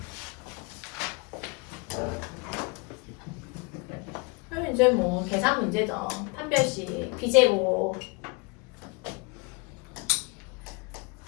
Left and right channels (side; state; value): right; quieter; 29.5 dB